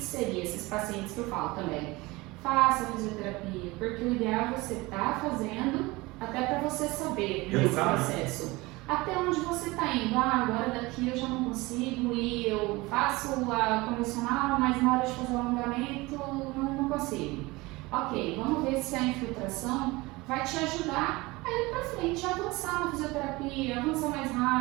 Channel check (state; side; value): quieter; left; 22.2 dB